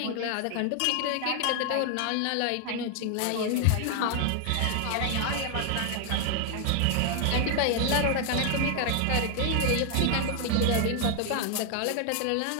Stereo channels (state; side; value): different; both; correlation 0.00